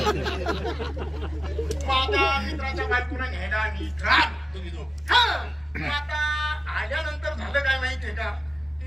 माझ्या मित्राच्या बायकोला न्यायला आम्ही तुम्ही दोघ आता आल्यानंतर झालं काय माहितीये का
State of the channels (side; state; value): both; normal; correlation 0.96